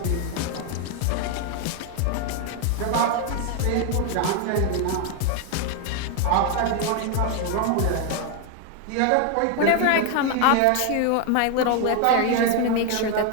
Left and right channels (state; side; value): different; both; correlation 0.01